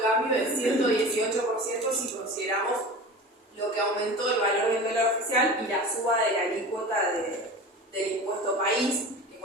cambio del 118% si consideramos lo que aumentó el valor del dólar oficial y la suba de la alícuota del impuesto país, que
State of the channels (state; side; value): normal; both; correlation 0.34